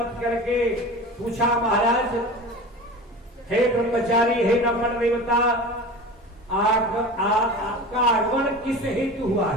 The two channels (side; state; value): both; normal; correlation 0.33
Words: करके पूछा, महाराज हे ब्रह्मचारी, हे नमन देवता, आपका आगमन किस हेतु हुआ